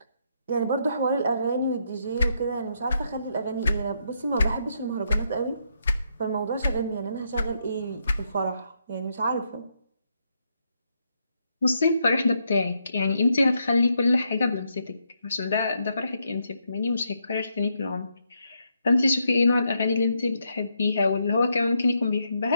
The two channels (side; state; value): both; inverted; correlation -0.78